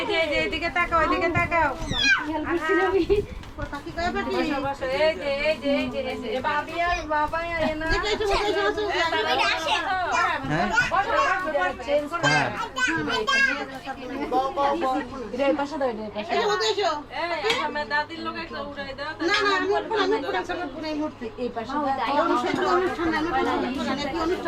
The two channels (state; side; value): identical; both; correlation 1.00